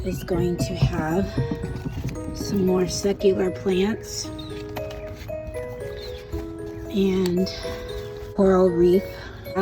is going to have some more secular plants and coral reef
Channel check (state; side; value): identical; both; correlation 1.00